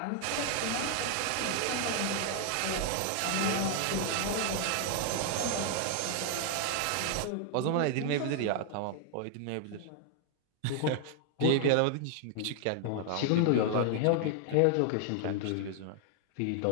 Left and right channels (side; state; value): both; different; correlation 0.00